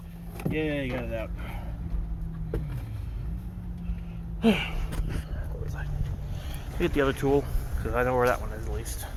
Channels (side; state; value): both; identical; correlation 1.00